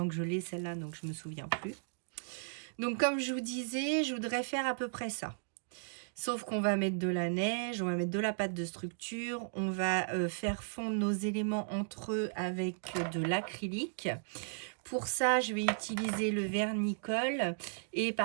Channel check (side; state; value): left; silent; digital silence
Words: que je l'ai celle-là, donc je ne me souviens plus. Donc comme je vous disais, je voudrais faire à peu près ça. Sauf qu'on va mettre de la neige, on va mettre de la pâte de structure, on va faire fondre nos éléments entre eux avec de l'acrylique. Pour ça, je vais utiliser le vernicole et